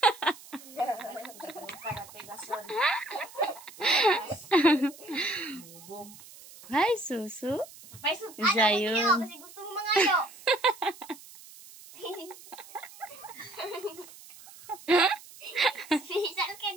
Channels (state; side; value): noise; right; hiss, 19 dB below the sound